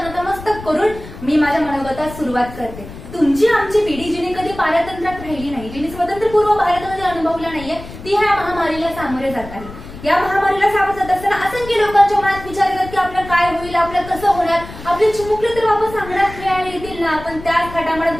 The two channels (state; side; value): noise; left; rumble, 14 dB below the sound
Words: नतमस्तक करून मी माझ्या मनोगतात सुरुवात करते. तुमची आमची पिढी जिने कधी पारतंत्र्यात राहिली नाही, जिने स्वतंत्रपूर्व भारतामध्ये अनुभवला नाहीये, ती ह्या महामारीला सामोरे जात आहे. या महामारीला सामोरे जात असताना असंख्य लोकांच्या मनात विचार येतात की आपलं काय होईल, आपलं कसं होणार, आपले चिमुकले तर वापस अंगणात खेळायला येतील ना, आपण त्याच थाटामाटात